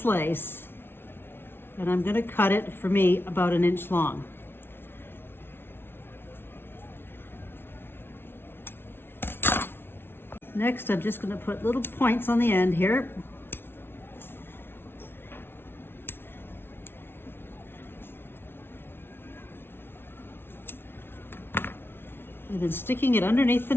lace, and I'm going to cut it, for me, about 1 inch long. Next, I'm just going to put little points on the end here. And then sticking it underneath the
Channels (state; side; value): late; right; 0.11 ms